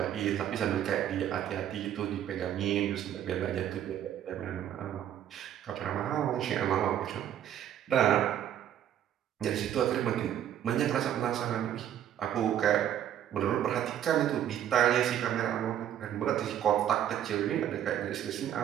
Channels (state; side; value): quieter; left; 10.6 dB